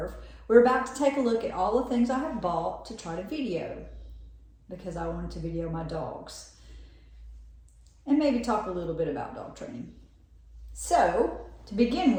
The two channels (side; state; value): both; identical; correlation 1.00